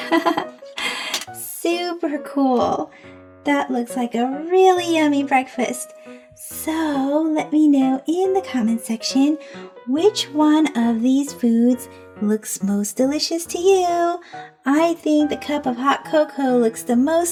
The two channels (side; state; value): both; identical; correlation 1.00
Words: super cool. That looks like a really yummy breakfast. So let me know in the comment section which one of these foods looks most delicious to you. I think the cup of hot cocoa looks the